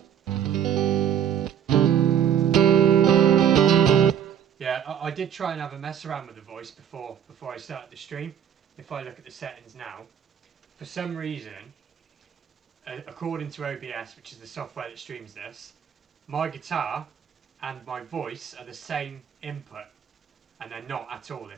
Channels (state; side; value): quieter; left; 9.0 dB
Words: Yeah, I did try and have a mess around with the voice before I started the stream. If I look at the settings now, for some reason, according to OBS, which is the software that streams this, my guitar and my voice are the same input, and they're not at all.